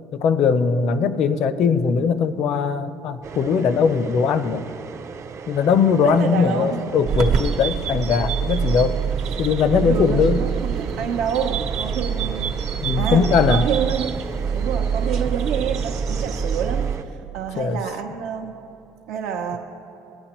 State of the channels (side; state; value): both; normal; correlation 0.58